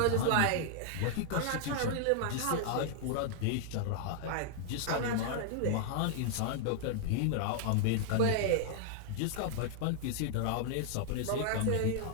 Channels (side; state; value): both; different; correlation 0.00